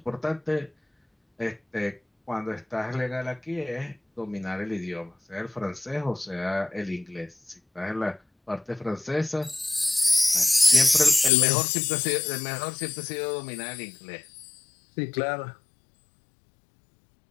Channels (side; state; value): right; drops out; at 11.3 s